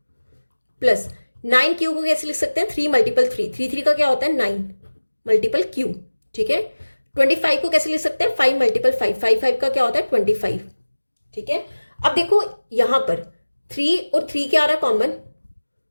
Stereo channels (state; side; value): inverted; both; correlation -1.00